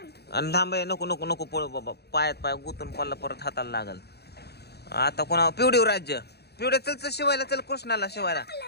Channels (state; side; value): late; right; 0.48 ms